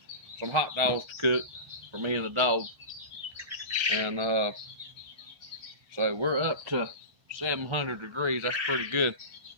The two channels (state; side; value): late; left; 1.1 ms